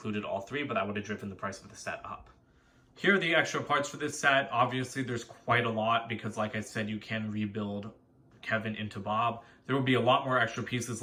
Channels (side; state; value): both; identical; correlation 1.00